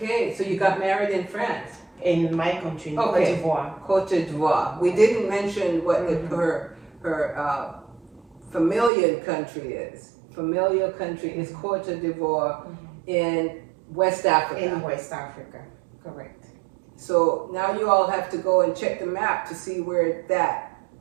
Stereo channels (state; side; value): drops out; left; at 8.9 s